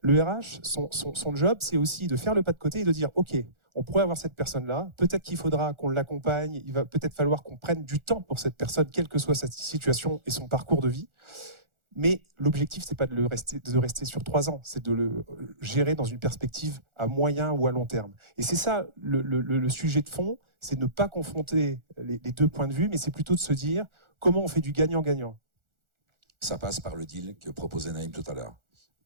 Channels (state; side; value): late; left; 1.4 ms